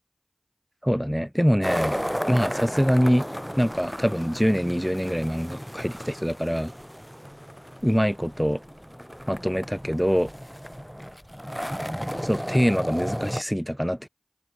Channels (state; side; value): identical; both; correlation 1.00